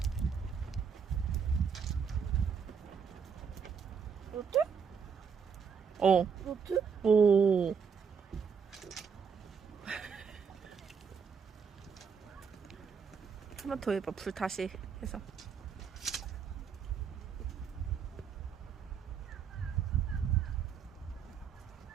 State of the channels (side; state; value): left; quieter; 6.4 dB